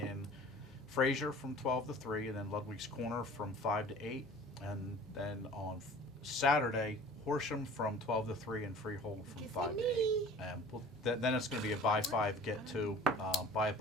Fraser from 12 to 3, and then Ludwig's Corner from 5 to 8. And then on Saturday, Horsham from 12 to 3 and Freehold from Get 5 to me. 8. And then it's going to be a buy 5, get 2. Buy a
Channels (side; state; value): both; normal; correlation 0.45